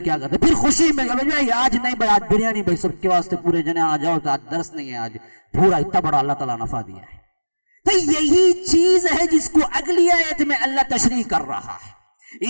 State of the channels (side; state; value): both; inverted; correlation -1.00